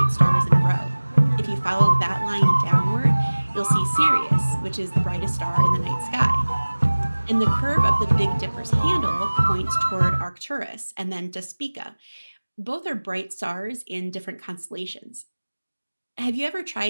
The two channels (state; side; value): inverted; both; correlation -1.00